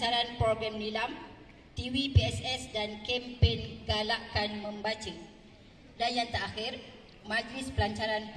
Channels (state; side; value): identical; both; correlation 1.00